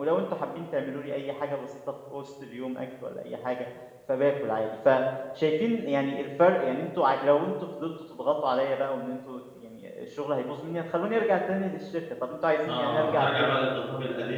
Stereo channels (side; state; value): both; identical; correlation 1.00